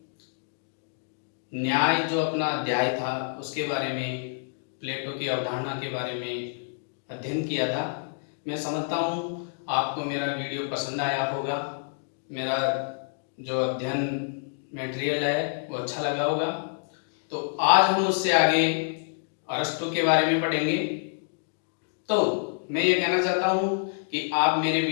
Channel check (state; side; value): silent; right; digital silence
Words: न्याय जो अपना अध्याय था उसके बारे में, प्लेटो की अवधारणा के बारे में अध्ययन किया था। मैं समझता हूँ आपको मेरा वीडियो पसंद आया होगा, मेरा जो अध्ययन मटेरियल है वो अच्छा लगा होगा। तो आज हम उससे आगे अरस्तु के बारे में पढ़ेंगे। तो मैं ये कहना चाहता हूँ कि आप मेरे